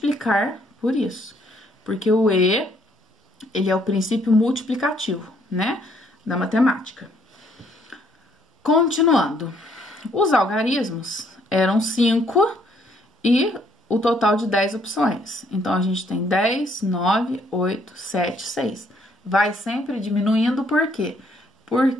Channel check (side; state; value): both; normal; correlation 0.67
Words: por isso. Porque o E, ele é o princípio multiplicativo, né? Da matemática. Continuando. Os algarismos eram 5 e o total de 10 opções. Então, a gente tem 10, 9, 8, 7, 6. Vai sempre diminuindo, por quê?